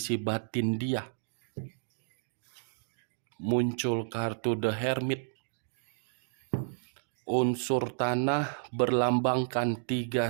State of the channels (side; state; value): left; silent; digital silence